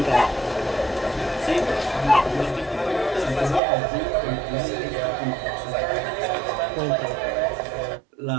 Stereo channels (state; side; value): drops out; left; at 3.6 s